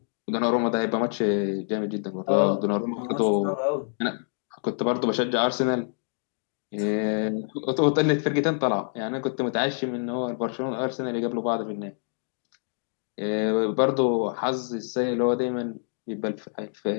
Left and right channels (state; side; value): silent; right; digital silence